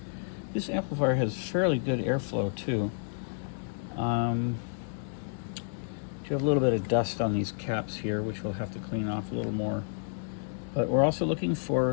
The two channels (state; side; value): silent; right; digital silence